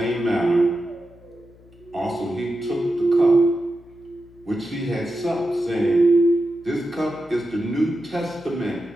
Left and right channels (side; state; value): left; noise; hum, 26 dB below the sound